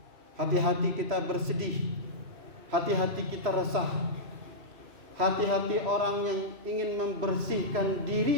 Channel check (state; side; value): late; left; 3.1 ms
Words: hati-hati kita bersedih, hati-hati kita resah, hati-hati orang yang ingin membersihkan